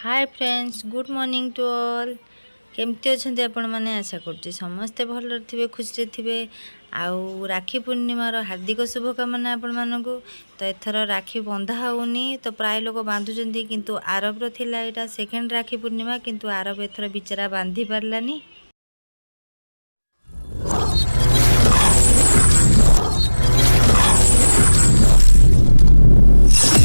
Hi friends good morning to all. केमती अच्छा आपण मैंने आशा कर समस्ते भल थे खुशी थे। आउ राखी पूर्णिमार हार्दिक शुभकामना आपण मानक। तो एथर राखी बंधा होनी तो प्राय लोक बांधुंट किंतु आरबर थिला एटा सेकेंड राखी पूर्णिमा किंतु आरब एथर बिचरा बांधी पारलानी।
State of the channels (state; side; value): inverted; both; correlation -1.00